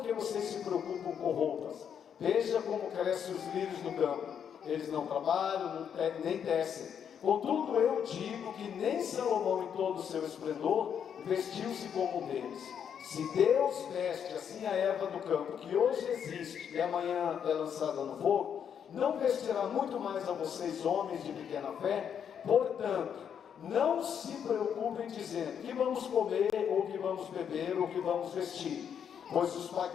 se preocupam com roupas? Veja como crescem os lírios do campo. Eles não trabalham, nem tecem. Contudo, eu digo que nem Salomão, em todo o seu esplendor, vestiu-se como um deles. Se Deus veste assim a erva do campo, que hoje existe e amanhã é lançada no fogo, não vestirá muito mais a vocês, homens de pequena fé? Portanto, não se preocupem dizendo que vamos comer, ou que vamos beber, ou que vamos vestir, pois os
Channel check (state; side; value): quieter; right; 8.1 dB